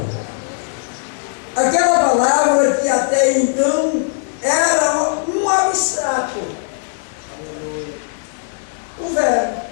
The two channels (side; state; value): right; silent; digital silence